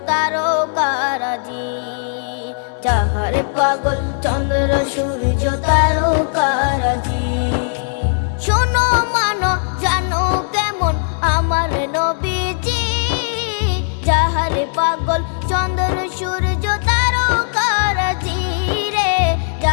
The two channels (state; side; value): silent; right; 67 dB below the other